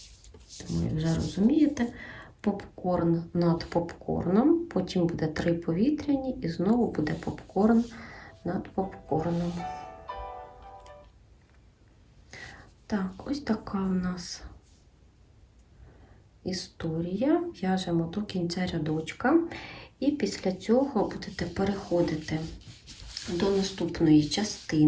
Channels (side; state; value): both; identical; correlation 1.00